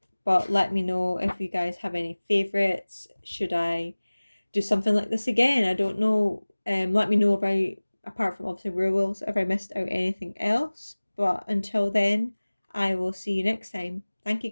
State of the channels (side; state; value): both; inverted; correlation -1.00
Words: But let me know if you guys have any favourites. Should I do something like this again? I don't know. Let me know about, apart from obviously werewolves, if I missed out anything else. But until then, I will see you next time. Thank you